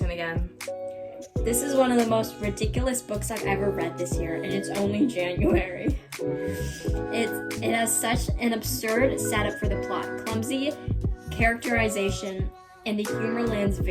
again. This is one of the most ridiculous books I've ever read this year, and it's only January. It has such an absurd setup for the plot, clumsy characterization, and the humor lands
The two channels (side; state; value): both; identical; correlation 1.00